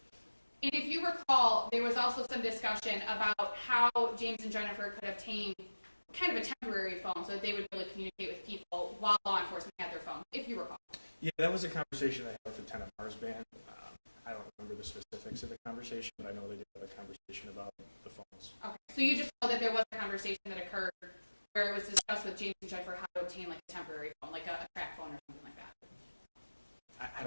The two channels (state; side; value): inverted; both; correlation -1.00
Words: And if you recall, there was also some discussion about how James and Jennifer could obtain kind of a temporary phone so that they would be able to communicate with people while law enforcement had their phone, if you recall. Yeah, that was a conversation I had with Lieutenant Marsban. I don't remember the specifics of the conversation, but I know they did have a conversation about the phones. Okay. So you just know that there was a conversation that occurred where it was discussed with James and Jennifer how to obtain like a temporary phone, like a track phone or something like that. I